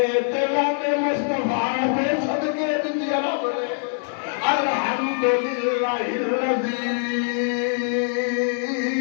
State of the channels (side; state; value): right; silent; 63 dB below the other